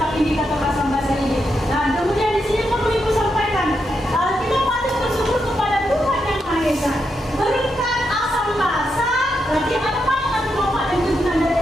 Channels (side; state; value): both; normal; correlation 0.83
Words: indikator asam basa ini. Nah, kemudian di sini perlu Ibu sampaikan, kita patut bersyukur kepada Tuhan Yang Maha Esa. Berkat asam basa, berarti ada banyak manfaat dan kegunaan